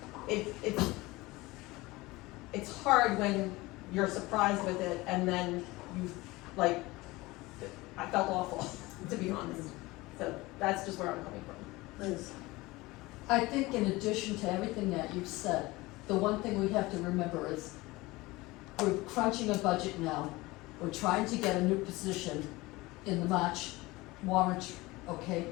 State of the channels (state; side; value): quieter; right; 21.1 dB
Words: it's hard when you're surprised with it, and then I felt awful, to be honest. So that's just where I'm coming from. Liz? I think in addition to everything that you've said, the one thing we have to remember is we're crunching a budget now. We're trying to get a new position in the March warrant, okay?